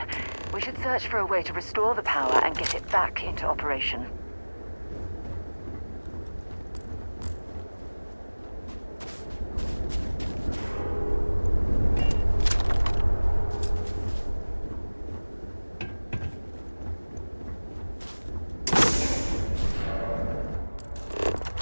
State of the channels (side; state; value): both; inverted; correlation -1.00